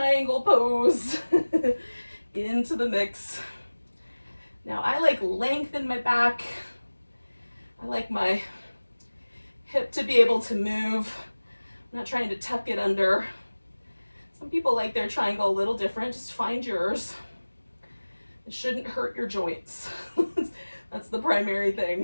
pose into the mix. Now I like length in my back. I like my hip to be able to move. I'm not trying to tuck it under. Some people like their triangle a little different. Just find yours. It shouldn't hurt your joints. That's the primary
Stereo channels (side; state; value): both; inverted; correlation -1.00